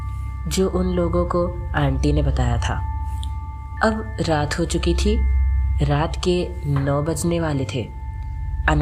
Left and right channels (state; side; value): identical; both; correlation 1.00